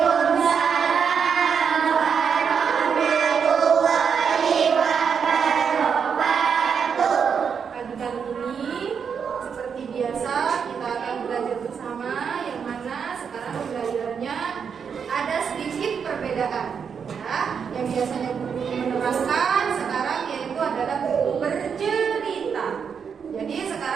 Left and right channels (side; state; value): left; quieter; 6.7 dB